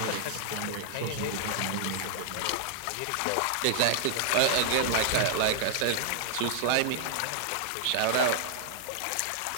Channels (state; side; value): different; both; correlation -0.01